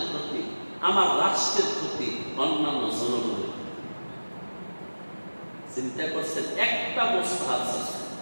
ক্ষতি, আমার রাষ্ট্রের ক্ষতি, অন্যান্য জনগণের। চিন্তা করছেন একটা মুস্তাহাব আছে,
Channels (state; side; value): inverted; both; correlation -1.00